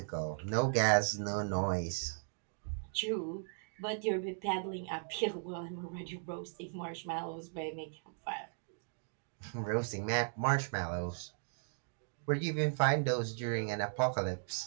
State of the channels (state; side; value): silent; left; digital silence